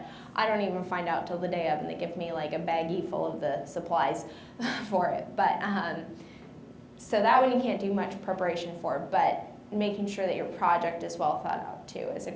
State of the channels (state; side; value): identical; both; correlation 1.00